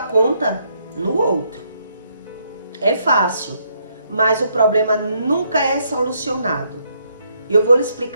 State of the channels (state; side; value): inverted; both; correlation -0.73